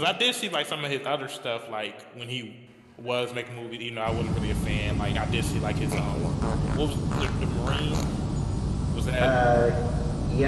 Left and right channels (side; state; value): both; identical; correlation 1.00